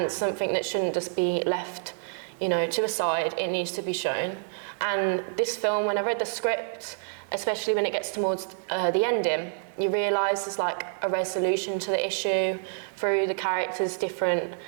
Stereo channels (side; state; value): left; silent; 58 dB below the other